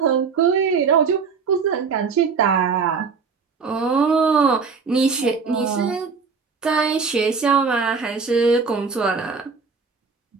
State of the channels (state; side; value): quieter; left; 5.3 dB